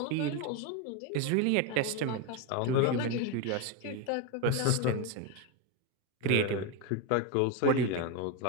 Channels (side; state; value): both; different; correlation 0.03